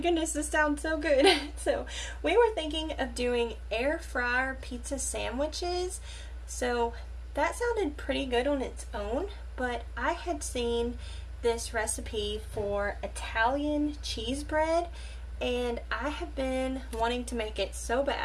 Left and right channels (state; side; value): identical; both; correlation 1.00